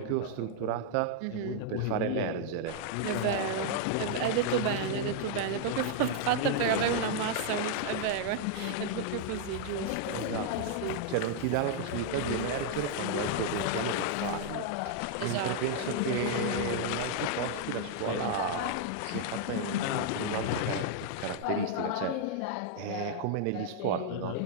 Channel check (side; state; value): both; different; correlation -0.01